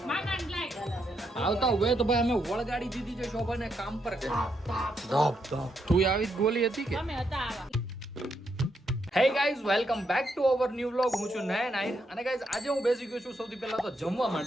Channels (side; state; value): both; normal; correlation 0.79